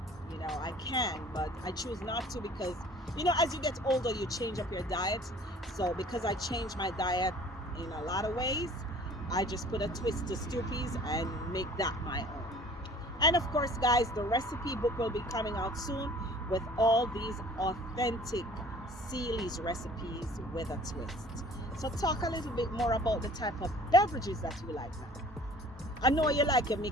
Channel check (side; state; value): both; normal; correlation 0.49